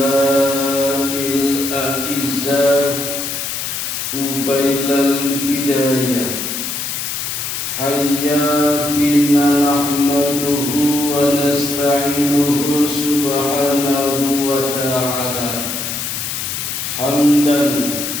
A'izzah Qubailal Bidayah Hayya bina nahmaduhu wa nasta'inuhu subhanahu wa ta'ala hamdan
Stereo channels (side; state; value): left; noise; hiss, 4 dB below the sound